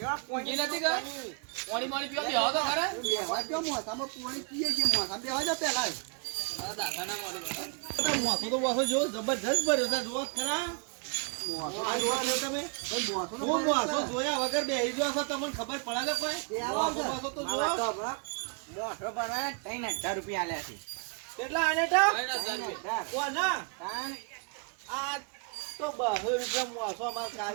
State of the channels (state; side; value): quieter; left; 37.3 dB